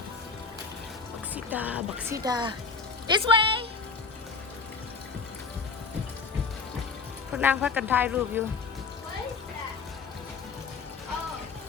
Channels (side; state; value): right; quieter; 4.8 dB